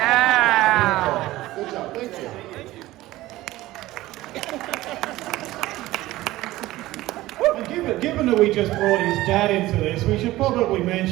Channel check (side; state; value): left; quieter; 17.1 dB